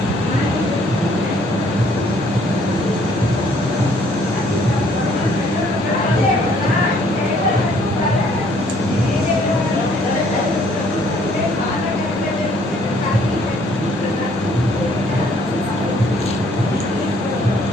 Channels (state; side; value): normal; both; correlation 0.62